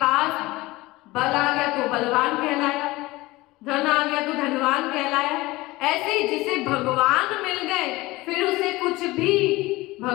बल आ गया तो बलवान कहलाया, धन आ गया तो धनवान कहलाया। ऐसे ही जिसे भगवान मिल गए फिर उसे कुछ भी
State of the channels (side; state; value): right; quieter; 20.2 dB